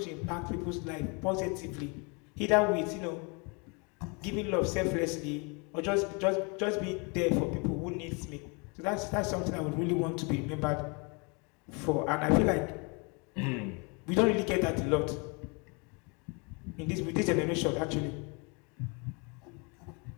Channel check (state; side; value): quieter; right; 32.2 dB